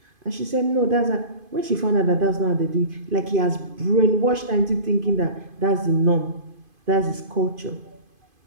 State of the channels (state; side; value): late; left; 2.5 ms